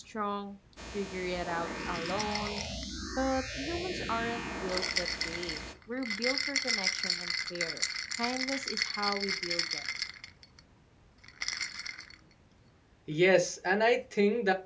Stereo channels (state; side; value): identical; both; correlation 1.00